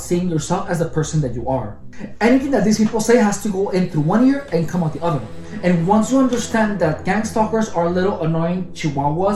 seeing yourself as the person that you are. Anything that these people say has to go in through one ear and come out the other. And once you understand that gang stalkers are little annoying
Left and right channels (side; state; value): both; identical; correlation 1.00